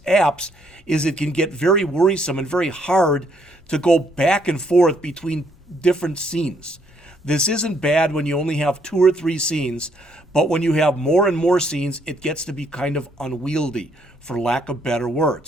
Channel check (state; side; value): normal; both; correlation 0.70